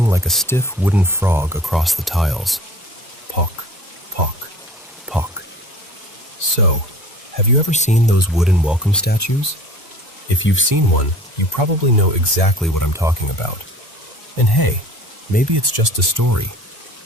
like a stiff wooden frog across the tiles. Pock, pock, pock. So, have you ever seen those wooden welcome statues? If you've seen one, you probably know exactly what I'm talking about. And hey, maybe it's just a story.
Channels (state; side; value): normal; both; correlation 0.45